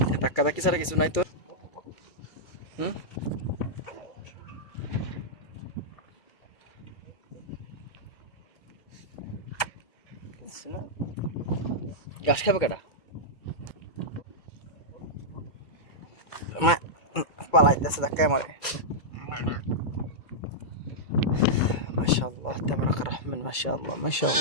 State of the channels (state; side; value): late; right; 2.2 ms